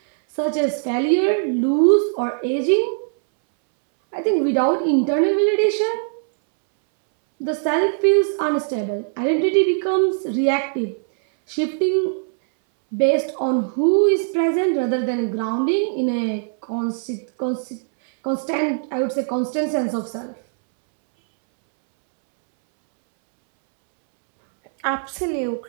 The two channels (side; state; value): left; silent; 65 dB below the other